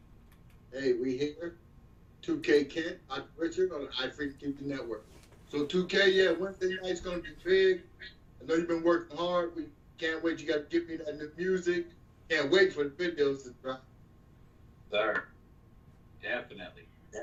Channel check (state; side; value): identical; both; correlation 1.00